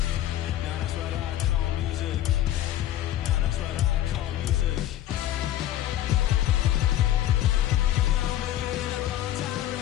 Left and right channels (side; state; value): right; quieter; 12.7 dB